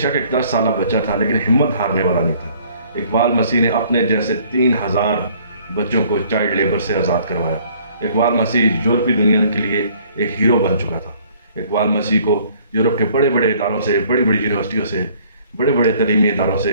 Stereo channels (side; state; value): both; inverted; correlation -0.58